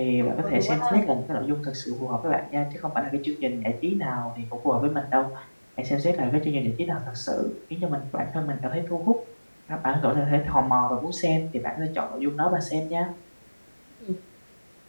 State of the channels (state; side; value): inverted; both; correlation -1.00